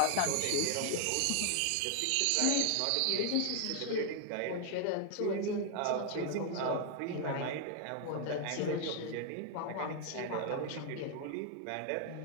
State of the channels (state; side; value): different; both; correlation 0.00